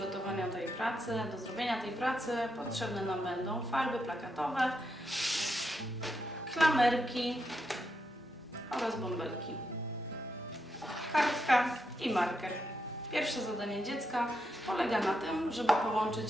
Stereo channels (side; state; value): both; normal; correlation 0.83